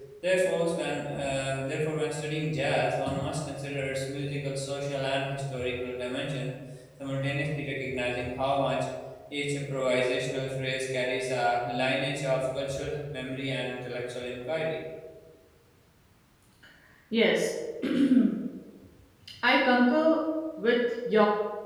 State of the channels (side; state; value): both; identical; correlation 1.00